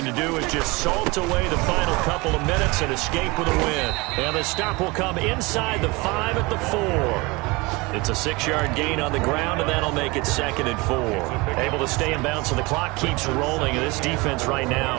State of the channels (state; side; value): quieter; left; 24.7 dB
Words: to do is just salt away the final couple of minutes and escape with a win. And the stop will come inside the 5 at the 4. It's a 6-yard gain on the ground, and that'll make it 2nd and 4. Able to stay in bounds, so the clock keeps rolling. And this defense right